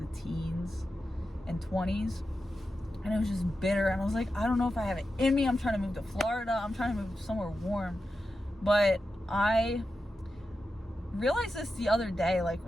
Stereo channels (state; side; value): normal; both; correlation 0.90